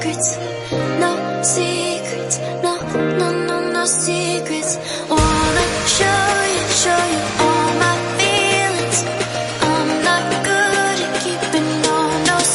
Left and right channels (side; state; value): both; identical; correlation 1.00